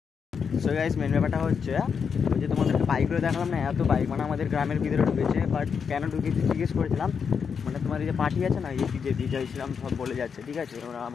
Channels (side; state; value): right; quieter; 6.4 dB